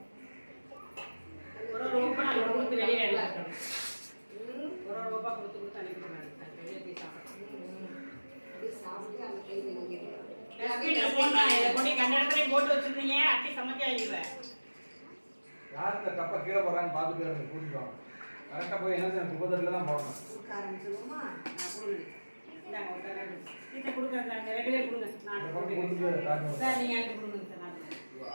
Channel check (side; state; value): both; inverted; correlation -1.00